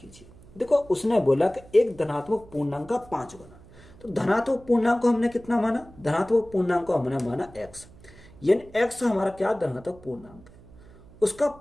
देखो उसने बोला कि एक धनात्मक पूर्णांक का 5 गुना, तो धनात्मक पूर्णांक को हमने कितना माना, धनात्मक पूर्णांक को हमने माना x, यानी x हमारा क्या धनात्मक पूर्णांक है, उसका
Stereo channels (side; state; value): right; noise; hum, 22 dB below the sound